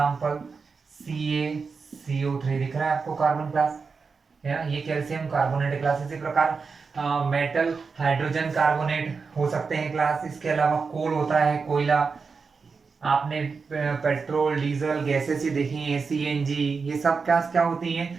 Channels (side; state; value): left; quieter; 5.0 dB